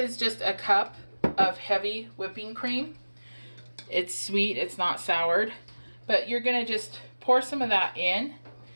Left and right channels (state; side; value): inverted; both; correlation -1.00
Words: just a cup of heavy whipping cream. It's sweet, it's not soured, but you're going to just pour some of that in,